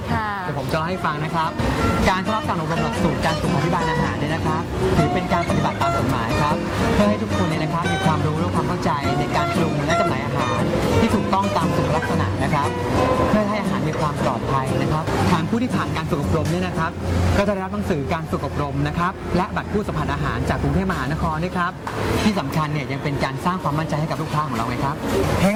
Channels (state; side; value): identical; both; correlation 1.00